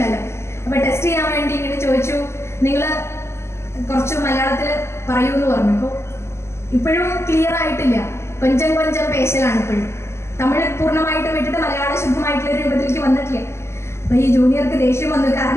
അപ്പൊ ടെസ്റ്റ് ചെയ്യാൻ വേണ്ടി ഇങ്ങനെ ചോദിച്ചു, നിങ്ങൾ കുറച്ച് മലയാളത്തിൽ പറയൂ എന്ന് പറഞ്ഞു. അപ്പോൾ ഇപ്പോഴും ക്ലിയർ ആയിട്ടില്ല, കൊഞ്ചം പേശലാണ് ഇപ്പോഴും. തമിഴ് പൂർണ്ണമായിട്ട് വിട്ടിട്ട് മലയാളം ശുദ്ധമായിട്ടുള്ള രൂപത്തിലേക്ക് വന്നിട്ടില്ല. അപ്പൊ ഈ ജൂനിയർക്ക് ദേഷ്യം വന്നു.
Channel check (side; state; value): right; late; 0.13 ms